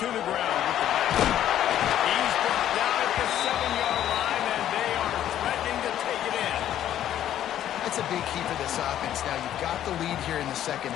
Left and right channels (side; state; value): right; quieter; 11.4 dB